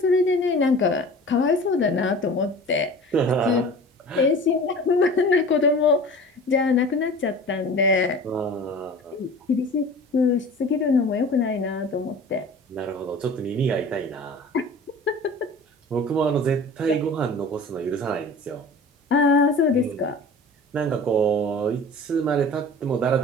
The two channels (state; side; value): normal; both; correlation 0.40